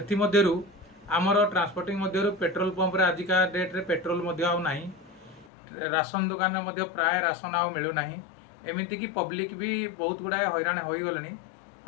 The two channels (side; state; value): right; drops out; at 5.5 s